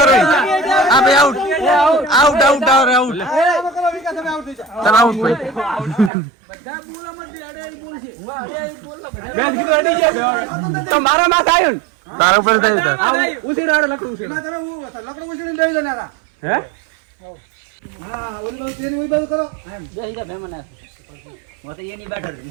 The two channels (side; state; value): left; drops out; at 6.1 s